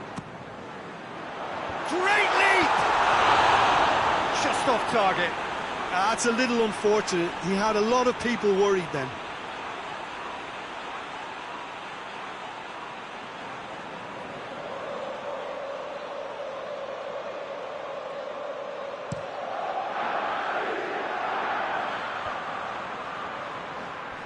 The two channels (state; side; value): identical; both; correlation 1.00